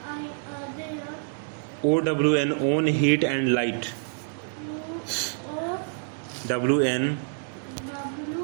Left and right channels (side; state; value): left; silent; digital silence